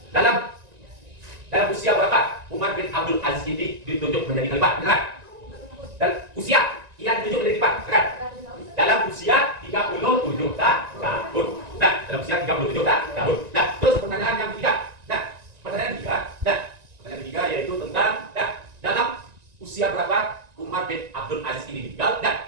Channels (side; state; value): left; late; 1.9 ms